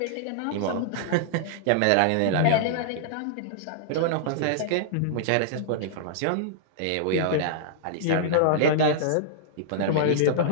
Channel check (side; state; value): both; different; correlation -0.02